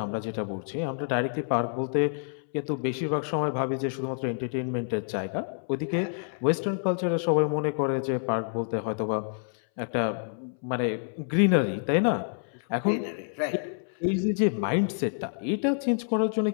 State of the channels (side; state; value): right; silent; 59 dB below the other